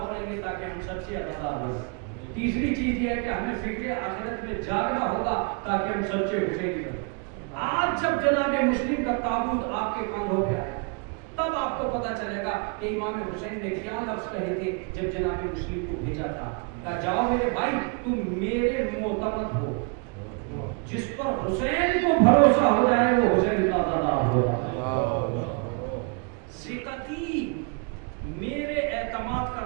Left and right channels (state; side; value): quieter; left; 35.5 dB